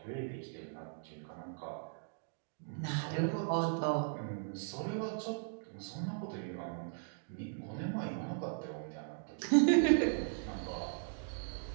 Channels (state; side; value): silent; left; digital silence